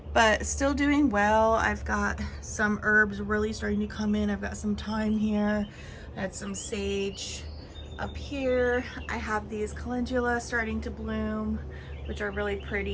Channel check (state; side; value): identical; both; correlation 1.00